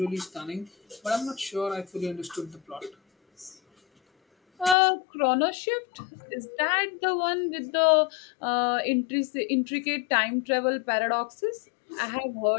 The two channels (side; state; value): right; drops out; at 4.8 s